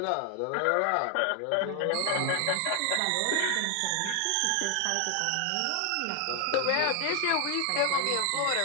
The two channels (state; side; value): different; both; correlation 0.01